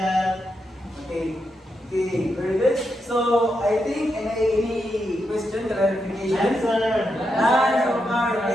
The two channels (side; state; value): both; normal; correlation 0.84